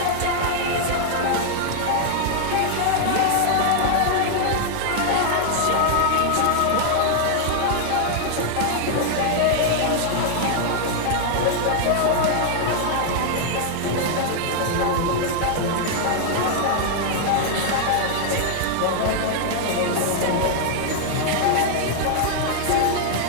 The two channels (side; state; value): both; different; correlation 0.00